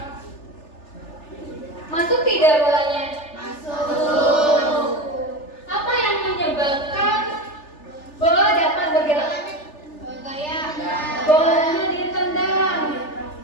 Masuk tidak bolanya? Masuk. Apa yang menyebabkan bola dapat bergerak? Gaya. Bolanya ditendang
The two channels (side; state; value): right; late; 3.4 ms